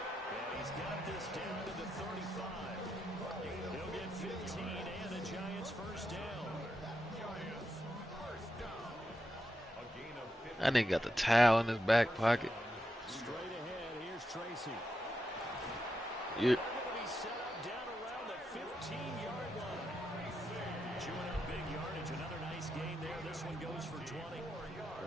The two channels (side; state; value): both; normal; correlation 0.85